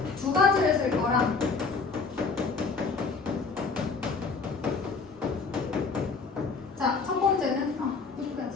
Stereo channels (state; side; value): quieter; right; 4.7 dB